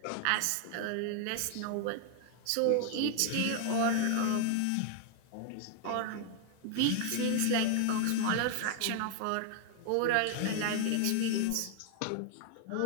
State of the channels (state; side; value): different; both; correlation 0.00